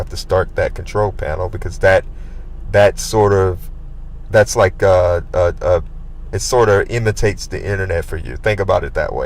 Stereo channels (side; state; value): both; identical; correlation 1.00